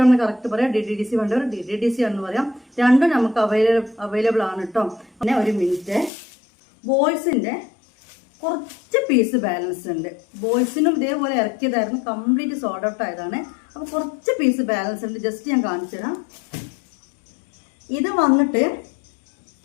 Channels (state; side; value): drops out; right; at 6.1 s